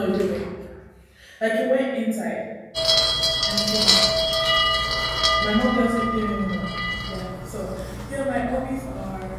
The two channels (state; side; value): identical; both; correlation 1.00